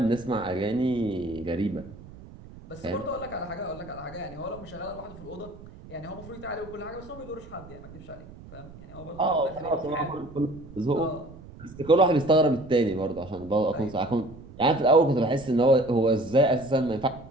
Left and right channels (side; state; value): right; noise; rumble, 18 dB below the sound